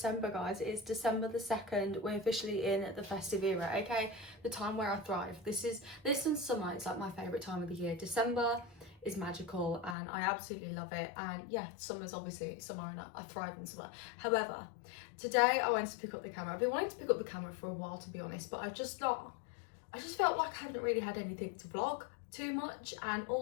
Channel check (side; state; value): right; drops out; at 10.0 s